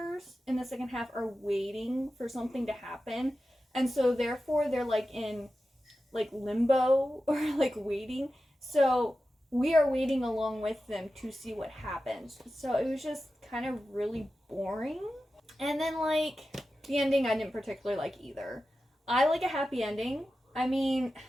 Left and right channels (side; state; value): both; normal; correlation 0.93